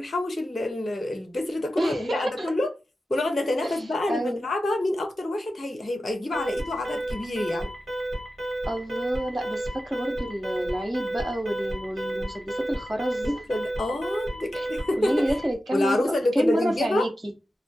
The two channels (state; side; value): normal; both; correlation 0.92